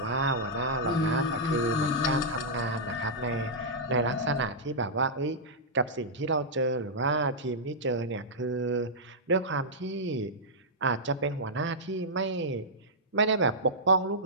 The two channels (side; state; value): both; normal; correlation -0.11